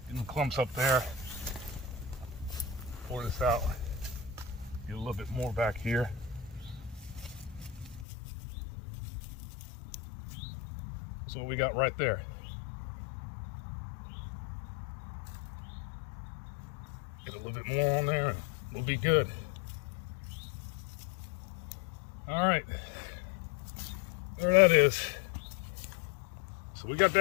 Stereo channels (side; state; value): right; drops out; at 8.1 s